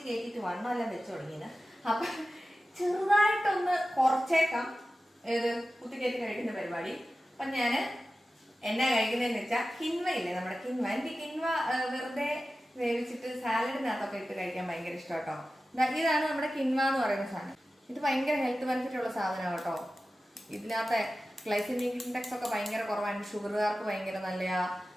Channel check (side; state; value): both; normal; correlation 0.94